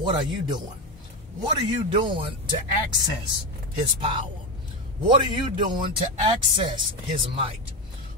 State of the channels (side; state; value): both; normal; correlation 0.15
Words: are you doing? What are you doing to access His power? What are you doing to access His might?